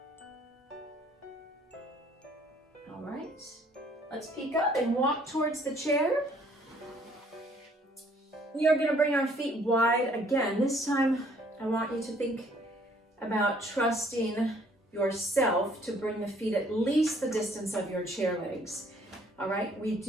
All right, let's peek up and walk towards the chair. We are going to bring our feet wide again. This time, I want you to think about trusting yourself to bring the feet at least the distance of your chair legs. All right, we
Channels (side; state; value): both; normal; correlation 0.61